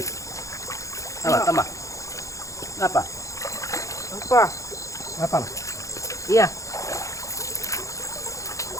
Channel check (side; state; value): right; late; 0.15 ms